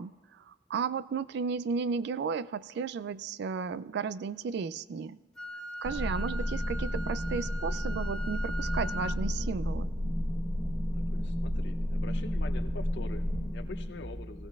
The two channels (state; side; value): normal; both; correlation 0.63